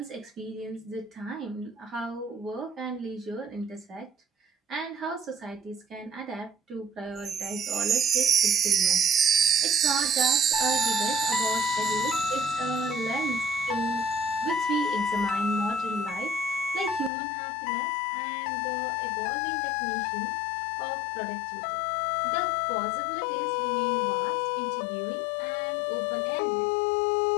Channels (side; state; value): right; drops out; at 17.1 s